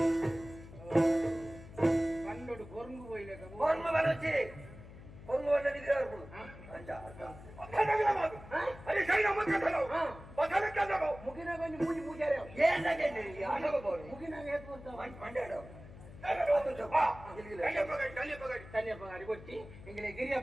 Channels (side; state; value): left; noise; hum, 16 dB below the sound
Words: కొరుంగు పోయలేక కొరుంగు వచ్చి కొరుంగు వల్ల నిద్రారు ముఖ ಮುಗಿನಾಗ ಒಂದು ಮೂಜಿ ಮೂಜಾರೆ ಏನಾಗೆ ಆಟೋಗೆ ಬೋರು ಮುಗಿನಾಗ ಏತ್ ಬರ್ತಾವ ಮಂಡ್ಯಾಡ ತನ್ಯಪ್ಪ ಗಾಡಿ ಕೊಟ್ಟಿ ಇಂಗ್ಲೆ